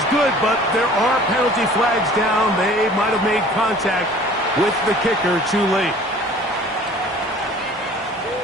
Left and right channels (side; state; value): both; normal; correlation 0.48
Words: good, but there are penalty flags down. They might have made contact with the kicker too late.